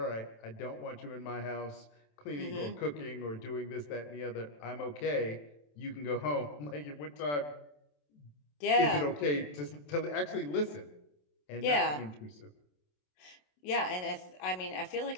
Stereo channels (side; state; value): right; late; 27 ms